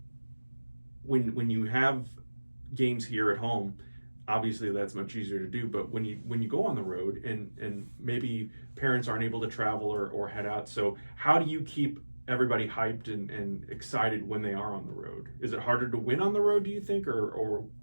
when you have games here at home, obviously that's much easier to do. But when you go on the road, and maybe parents aren't able to travel or head out, so how do you keep everybody hyped and excited when they are on the road? Is it harder to win on the road, do you think, or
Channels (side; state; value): both; inverted; correlation -1.00